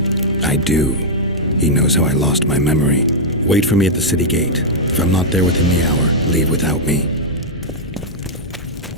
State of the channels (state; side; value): normal; both; correlation -0.05